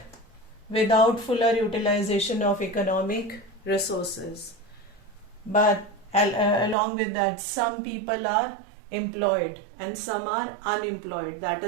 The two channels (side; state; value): left; drops out; at 6.8 s